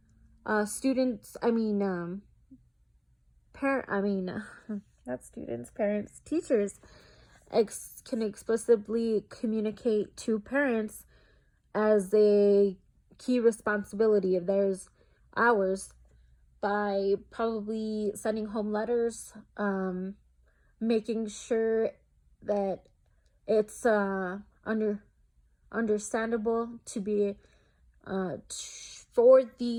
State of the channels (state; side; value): identical; both; correlation 1.00